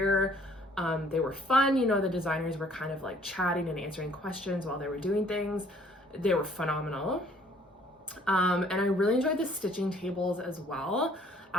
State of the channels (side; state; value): both; normal; correlation 0.59